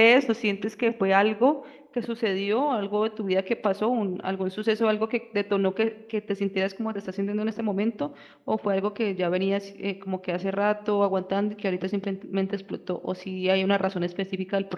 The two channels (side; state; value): both; identical; correlation 1.00